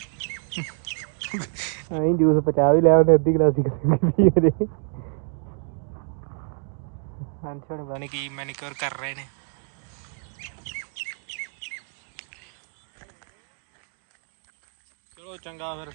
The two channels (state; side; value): silent; left; 56 dB below the other